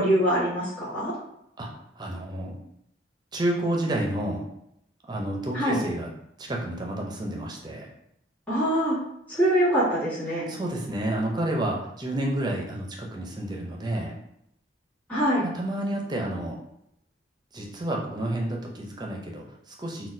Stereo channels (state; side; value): normal; both; correlation 0.55